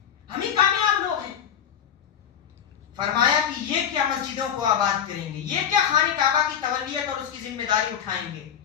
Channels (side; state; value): right; quieter; 8.8 dB